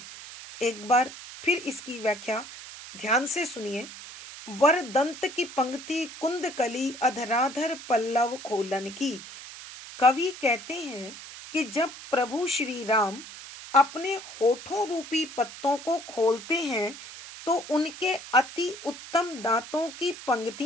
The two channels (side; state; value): right; noise; hiss, 14 dB below the sound